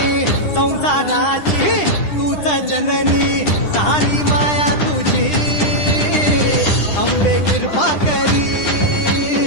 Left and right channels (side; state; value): right; late; 9.9 ms